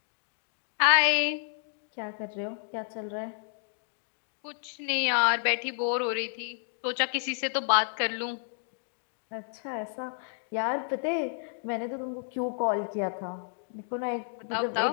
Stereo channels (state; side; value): silent; right; digital silence